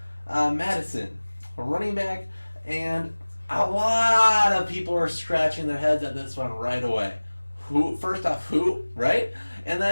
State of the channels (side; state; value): both; inverted; correlation -1.00